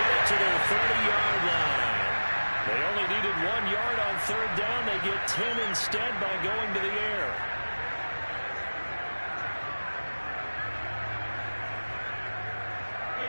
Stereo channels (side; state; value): both; inverted; correlation -1.00